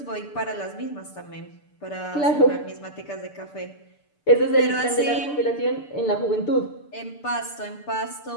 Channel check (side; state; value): right; late; 6.8 ms